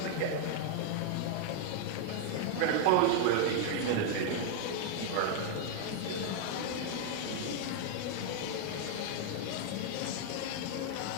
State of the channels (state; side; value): different; both; correlation 0.00